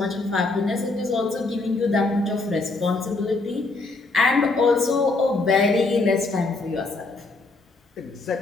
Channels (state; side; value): quieter; right; 3.4 dB